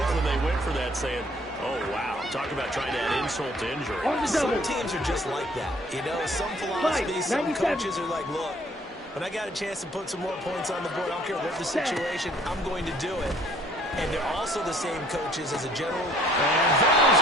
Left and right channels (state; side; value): normal; both; correlation 0.60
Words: when they went for that, saying, oh, wow. Talk about trying to add insult to injury. Some teams are just like that. You know, some philosophies, some coaches are like, look, when I got a chance to put some more points on the board, I don't care what the situation, I'm going to do it. And they're also the same coaches as a general. And that is